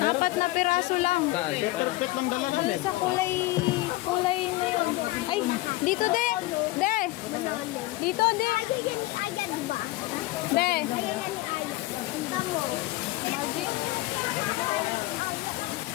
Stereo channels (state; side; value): quieter; right; 19.1 dB